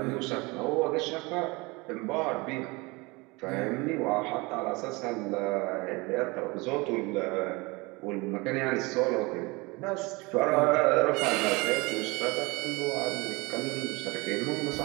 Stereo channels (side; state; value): left; quieter; 25.2 dB